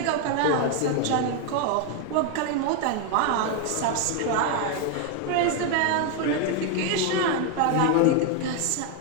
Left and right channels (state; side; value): different; both; correlation 0.01